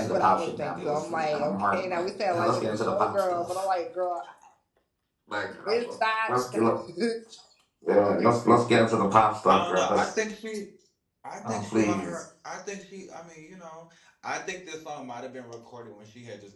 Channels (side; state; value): both; identical; correlation 1.00